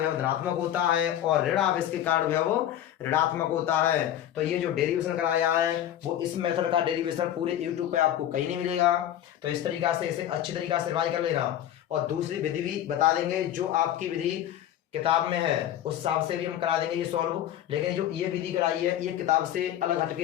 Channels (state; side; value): quieter; right; 11.6 dB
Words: धनात्मक होता है और ऋण आवेश के कारण विभव ऋणात्मक होता है। तो ये जो डेरिवेशन कराया है वो इस मेथड का डेरिवेशन पूरे यूट्यूब पे आपको कहीं नहीं मिलेगा। तो इस तरीका से इसे अच्छी तरीका से रिवाइज कर लेना, और दूसरी विधि भी बता देंगे जो आपकी विधि किताब में है उस हिसाब से भी हम करा देंगे ये सॉल्व, लेकिन जो ये विधि कराई है ये किताब से अलग